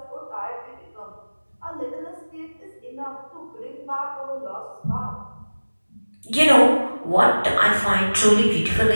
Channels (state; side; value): inverted; both; correlation -1.00